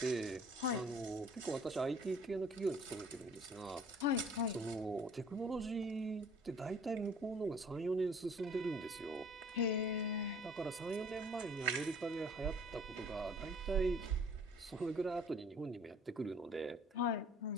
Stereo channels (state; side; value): normal; both; correlation 0.53